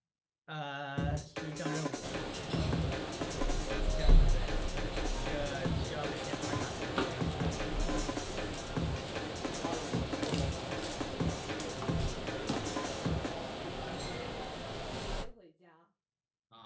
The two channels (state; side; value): identical; both; correlation 1.00